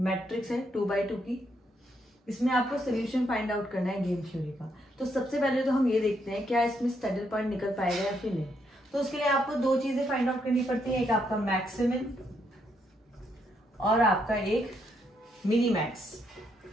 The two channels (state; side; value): normal; both; correlation 0.76